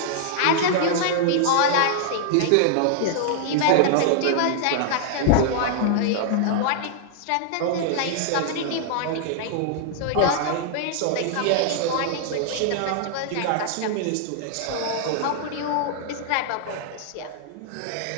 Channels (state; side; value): different; both; correlation -0.01